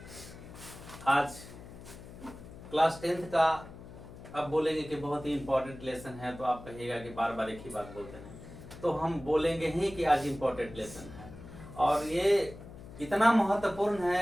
आज क्लास 10th का अब बोलेंगे कि बहुत ही इंपॉर्टेंट लेसन है, तो आप कहिएगा कि बार बार एक ही बात बोलते हैं, तो हम बोलेंगे ही कि आज इंपॉर्टेंट लेसन है। और ये इतना महत्वपूर्ण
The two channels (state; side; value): noise; left; hum, 15 dB below the sound